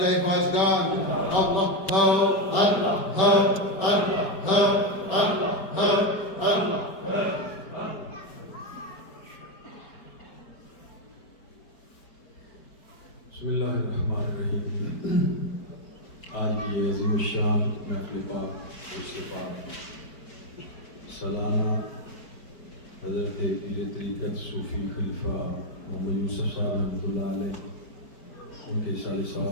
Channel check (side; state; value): right; late; 5.1 ms